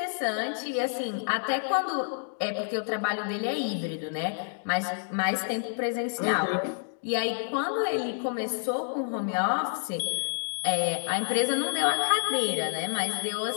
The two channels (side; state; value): right; silent; digital silence